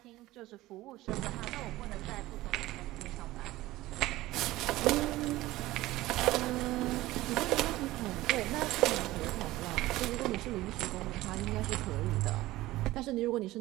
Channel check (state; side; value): quieter; left; 17.3 dB